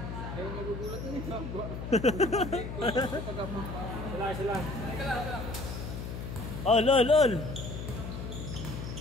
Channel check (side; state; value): left; noise; hum, 7 dB below the sound